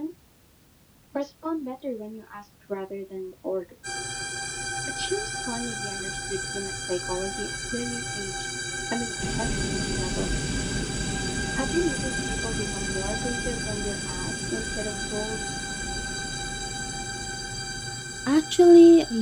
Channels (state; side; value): identical; both; correlation 1.00